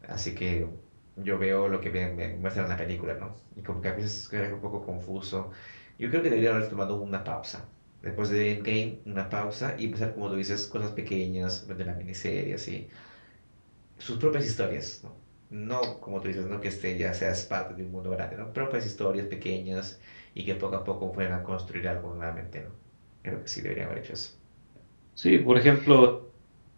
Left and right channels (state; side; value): inverted; both; correlation -1.00